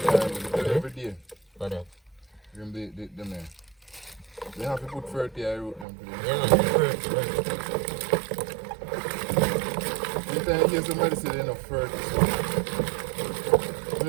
every day. For that. Them the man. They have to put 30 I wrote them for them. Yeah, man, the first, man. Anytime you hear somebody say they're not 30, so. You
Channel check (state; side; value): drops out; left; at 5.9 s